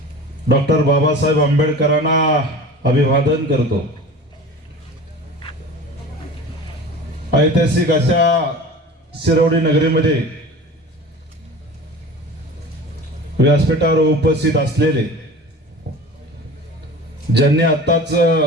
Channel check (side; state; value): both; normal; correlation 0.38